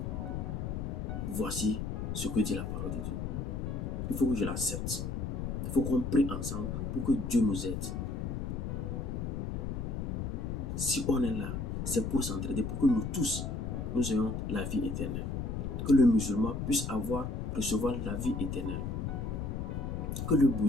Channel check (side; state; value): left; noise; rumble, 3 dB below the sound